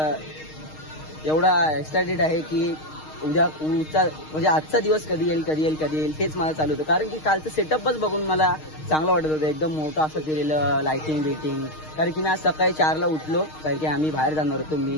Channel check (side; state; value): right; late; 6.5 ms